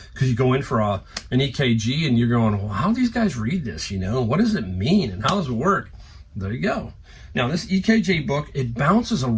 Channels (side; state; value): both; identical; correlation 1.00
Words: Because you go in for an EKG and you're going, well, how do these guys read this, you know? What does it mean and how does it work? There you go. Now, this EKG book, it bounces